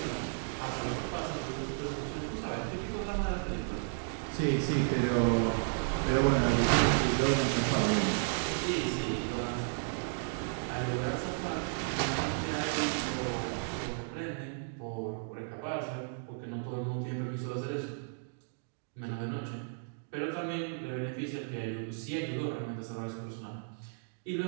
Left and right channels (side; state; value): left; silent; digital silence